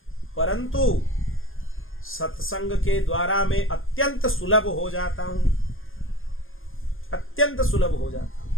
परंतु सत्संग के द्वारा मैं अत्यंत सुलभ हो जाता हूं, अत्यंत सुलभ हो जाता हूं।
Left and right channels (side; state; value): right; late; 0.59 ms